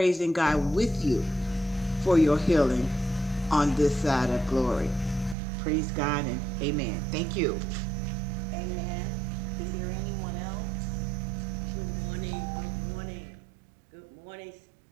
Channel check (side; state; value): left; drops out; at 5.4 s